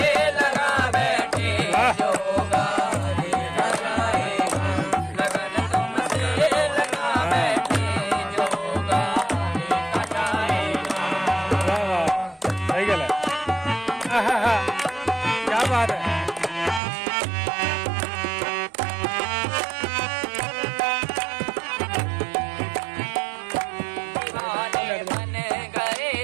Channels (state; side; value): drops out; left; at 16.8 s